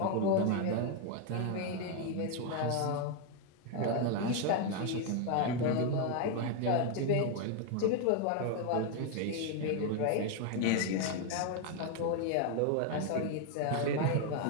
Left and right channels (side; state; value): both; different; correlation 0.01